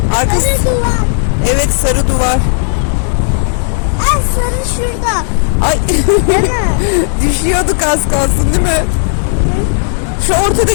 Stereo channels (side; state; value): right; silent; digital silence